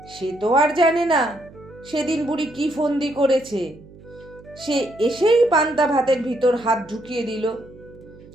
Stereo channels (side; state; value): right; noise; hum, 21 dB below the sound